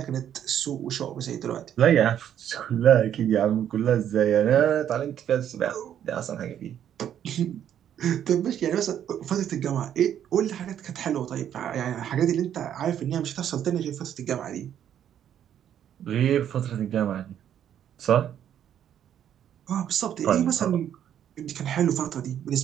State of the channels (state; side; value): quieter; left; 10.0 dB